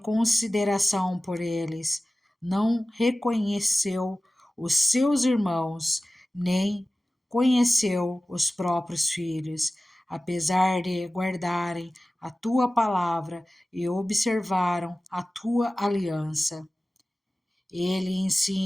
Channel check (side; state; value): both; normal; correlation 0.97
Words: por eles. Não reconheceu os seus irmãos, nem conheceu os próprios filhos, apesar de guardarem a tua palavra e observaram a tua aliança. Ele